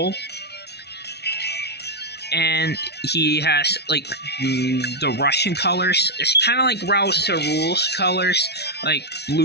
And he has like the Russian colors. It's kind of like Raul Sarul's colors, like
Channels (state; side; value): late; right; 0.49 ms